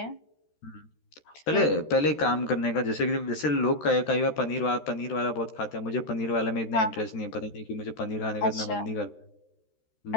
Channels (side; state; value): right; late; 13 ms